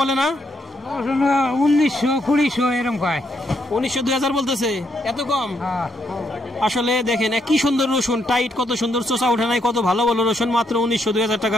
বলে না? 1900 2000 এরকম কয়। 1900 2000 বলতেছে, এত কম? আসলে দেখেন কি সুন্দর রসুন, টাইট, কত সুন্দর, চোষা ওঠে নাই, কত ভালো ভালো রসুন, মাত্র 1900 2000 টাকা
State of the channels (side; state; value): both; normal; correlation 0.76